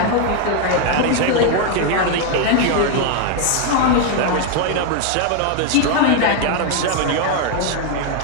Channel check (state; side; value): different; both; correlation 0.01